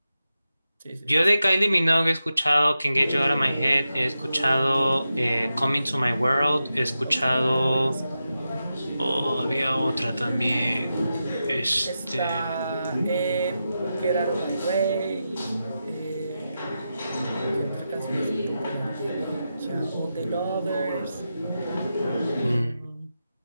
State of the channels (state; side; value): inverted; both; correlation -0.90